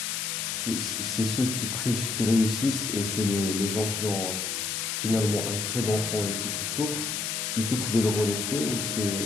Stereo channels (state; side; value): noise; left; hiss, 2 dB below the sound